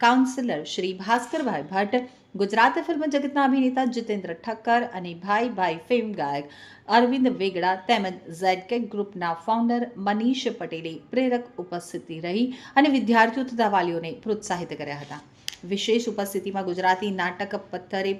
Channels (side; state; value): both; identical; correlation 1.00